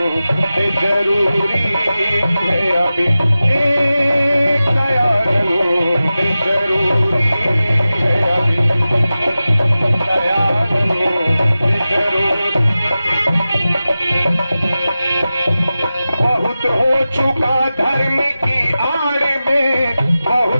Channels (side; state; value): both; inverted; correlation -0.95